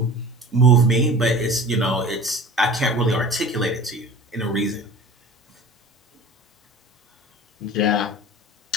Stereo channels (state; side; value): normal; both; correlation 0.39